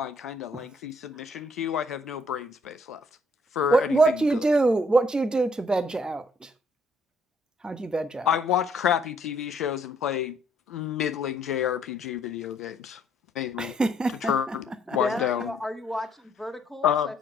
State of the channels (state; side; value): normal; both; correlation 0.66